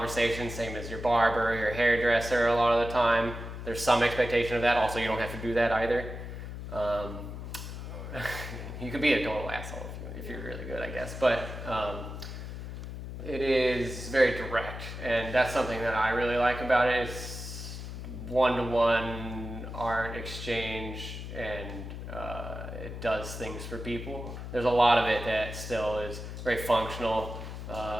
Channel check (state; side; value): noise; left; hum, 8 dB below the sound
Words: same as your barber, your hairdresser a lot of the time. There's some expectation of that. Also, you don't have to do that either. You could be a total asshole if you're really good, I guess. But it is very direct, and that's something that I really like about it. It's one-to-one art exchange, and it does things for people. There's a lot of it that still is very functional.